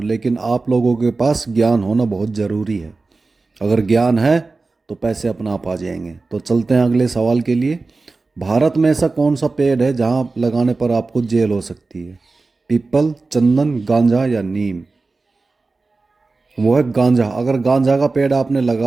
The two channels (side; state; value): left; quieter; 3.7 dB